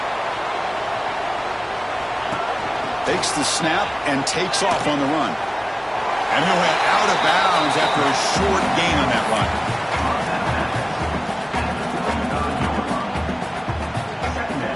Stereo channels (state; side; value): identical; both; correlation 1.00